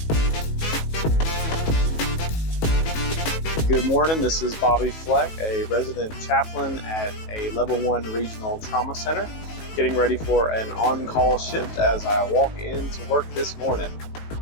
Good morning, this is Bobby Fleck, a resident chaplain at a level 1 regional trauma center, getting ready for an on-call shift as I walk into work this morning.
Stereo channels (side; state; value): right; late; 19 ms